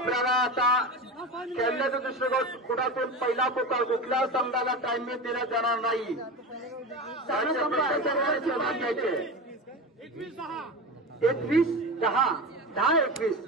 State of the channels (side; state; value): both; normal; correlation 0.25